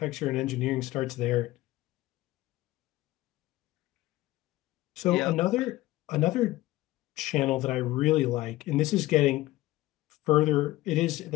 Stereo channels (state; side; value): quieter; right; 17.4 dB